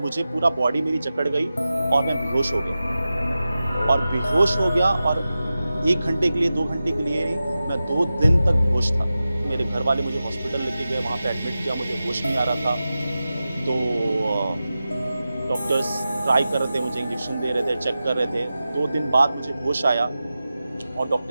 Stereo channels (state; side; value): inverted; both; correlation -0.94